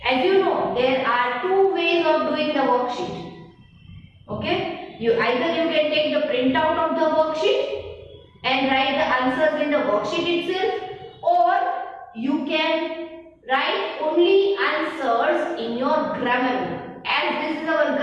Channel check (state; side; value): identical; both; correlation 1.00